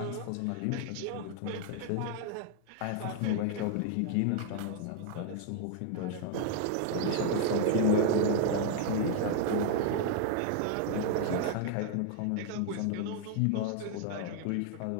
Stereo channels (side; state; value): both; different; correlation 0.00